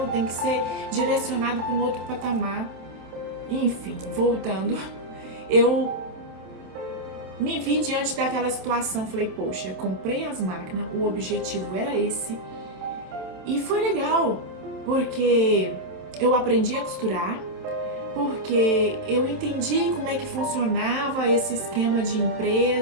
tem que ser direcionado para um outro patamar. Enfim, voltando, eu me vi diante daquela situação, falei, poxa, comprei as máquinas, o objetivo era esse, e foi legal, porque eu aprendi a costurar, porque eu entendi como é que funcionava esse esquema de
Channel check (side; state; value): left; late; 27 ms